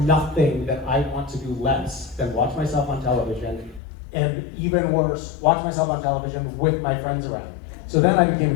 that I want to do less than watch myself on television, and even worse, watch myself on television with my friends around. So then I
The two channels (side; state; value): right; drops out; at 3.8 s